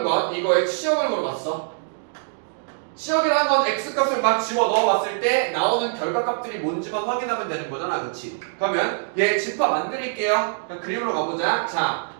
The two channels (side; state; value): left; silent; digital silence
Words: 건 이거의 치역을 물어봤어. 치역이라는 건 x값을 막 집어 넣어봤을 때 나오는 결과값들이 뭔지만 확인하면 되는 거잖아. 그치? 그러면 얘 집합 만들게요. 그림으로 가보자. 자,